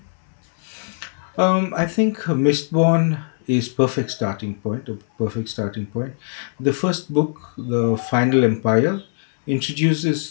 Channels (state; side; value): silent; right; 65 dB below the other